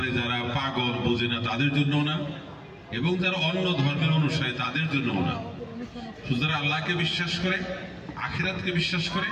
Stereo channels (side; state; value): both; identical; correlation 1.00